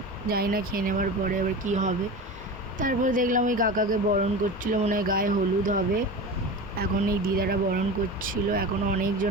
জানি না খেয়ে নেওয়ার পরে এবার কী হবে। তারপরে দেখলাম ওই কাকাকে বরণ করছিল, মনে হয় গায়ে হলুদ হবে। এখন এই দিদারা বরণ করছিল, এখনও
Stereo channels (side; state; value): both; normal; correlation 0.30